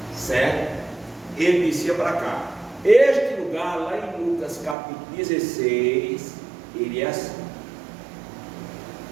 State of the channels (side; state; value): left; drops out; at 4.8 s